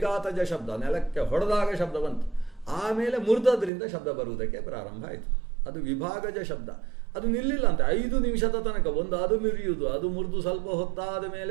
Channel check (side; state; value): left; drops out; at 3.7 s